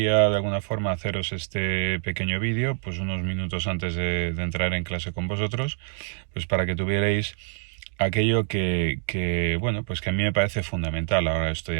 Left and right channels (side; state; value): left; silent; 58 dB below the other